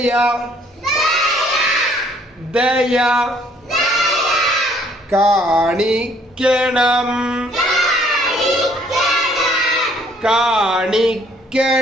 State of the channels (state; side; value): normal; both; correlation 0.62